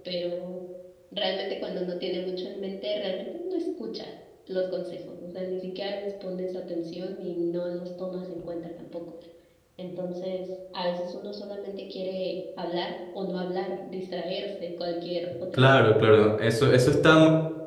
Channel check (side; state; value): both; identical; correlation 1.00